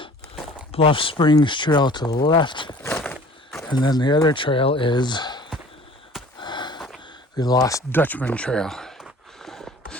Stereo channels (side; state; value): both; normal; correlation 0.48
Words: Bluff Springs Trail to the left, and then the other trail is the Lost Dutchman Trail.